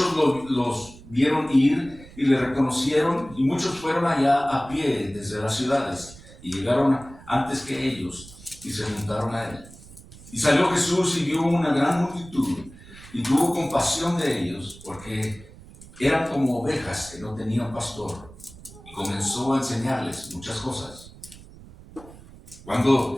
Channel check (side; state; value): right; noise; rumble, 19 dB below the sound